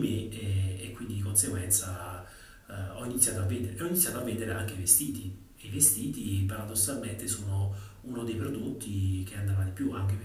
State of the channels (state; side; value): identical; both; correlation 1.00